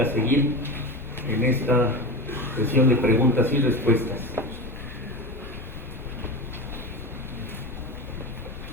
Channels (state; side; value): normal; both; correlation 0.25